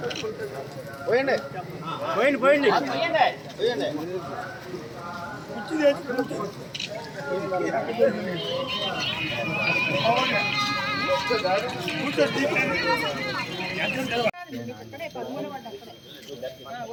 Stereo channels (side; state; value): both; identical; correlation 1.00